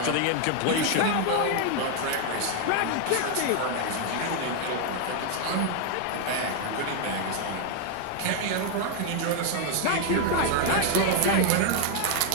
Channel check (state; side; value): different; both; correlation 0.00